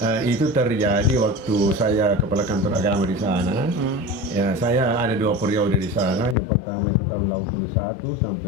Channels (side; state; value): right; drops out; at 6.4 s